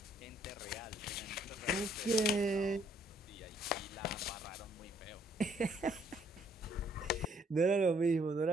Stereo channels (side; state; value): both; normal; correlation 0.66